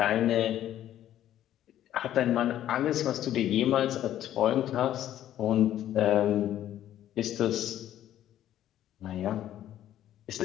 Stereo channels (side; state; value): right; quieter; 12.0 dB